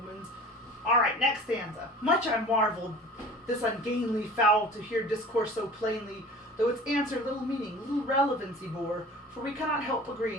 Alright, next stanza. Much I marveled this ungainly fowl to hear discourse so plainly, though its answer little meaning, little relevancy bore, for we cannot help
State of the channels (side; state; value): both; normal; correlation 0.42